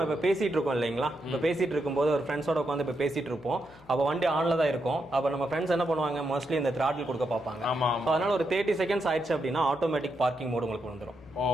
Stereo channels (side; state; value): left; noise; hum, 25 dB below the sound